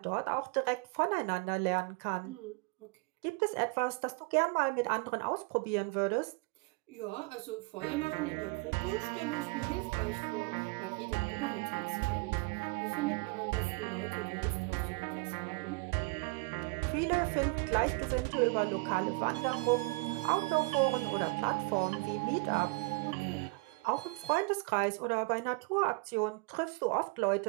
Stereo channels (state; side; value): quieter; left; 28.2 dB